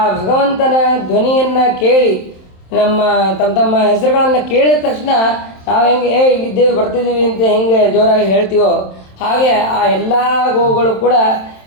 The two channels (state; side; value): late; right; 27 ms